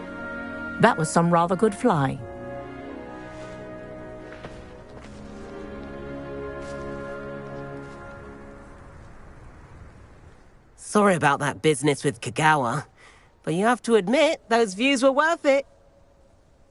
That was some rather good flying. Sorry about that business with Kagawa, but you have to admit, those views were worth it.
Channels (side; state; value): both; identical; correlation 1.00